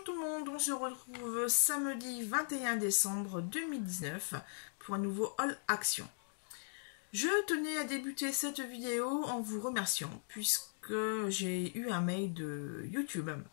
tout le monde, on se retrouve samedi 21 décembre 2019 pour un nouveau Haul Action. Je tenais à débuter cette vidéo en vous remerciant puisque j'ai eu un mail de YouTube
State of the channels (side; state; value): right; silent; digital silence